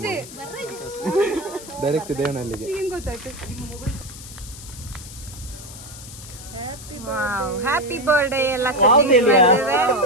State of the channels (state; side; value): noise; left; hiss, 15 dB below the sound